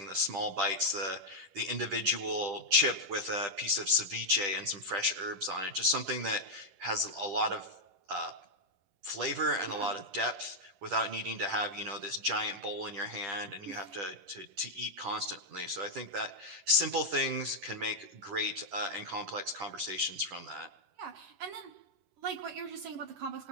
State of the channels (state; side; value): late; left; 10 ms